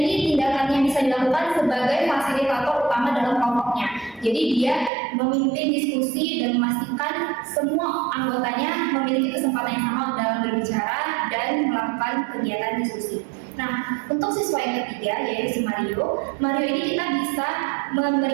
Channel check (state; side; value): drops out; left; at 4.9 s